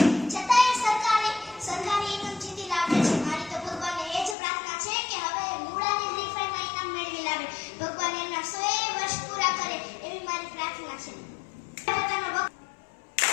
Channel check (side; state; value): right; drops out; at 4.4 s